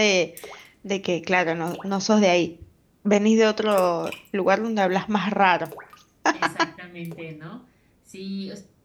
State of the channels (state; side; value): identical; both; correlation 1.00